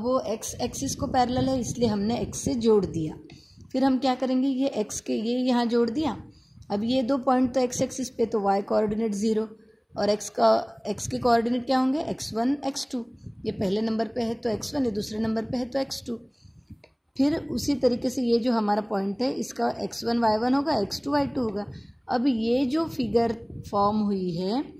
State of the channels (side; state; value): both; identical; correlation 1.00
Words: वो एक्स एक्सिस को पैरेलल है इसलिए हमने एक्स से जोड़ दिया। फिर हम क्या करेंगे, ये एक्स के ये यहाँ जोड़ दिया अब ये दो पॉइंट तो एक्स एक्सिस पे, तो वाई कोऑर्डिनेट 0 और एक्स के कोऑर्डिनेट क्या होंगे, x1 x2। ये पहले नंबर पे है तो x1, ये दूसरे नंबर पे है तो x2। फिर उसी तरीके से ये जो हमारा पॉइंट है इसका x1 y1 होगा, x2 y2 होगा। अब ये जो फिगर फॉर्म हुई है,